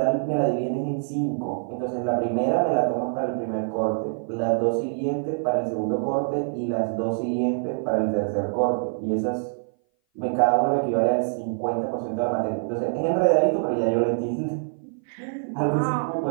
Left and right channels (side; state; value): left; silent; 58 dB below the other